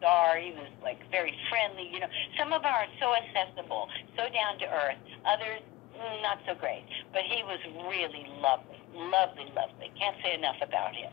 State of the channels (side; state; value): right; quieter; 18.4 dB